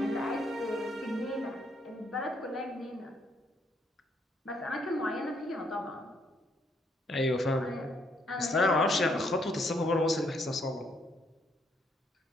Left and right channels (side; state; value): both; normal; correlation 0.71